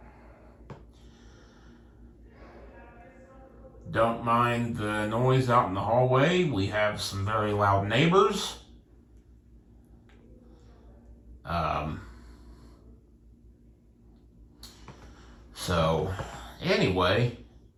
Don't mind the noise out in the hallway. We have some very loud neighbors. So, anyway,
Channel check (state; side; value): identical; both; correlation 1.00